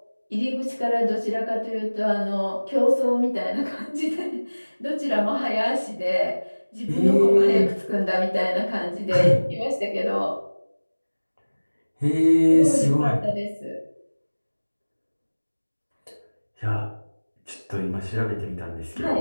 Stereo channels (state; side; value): inverted; both; correlation -1.00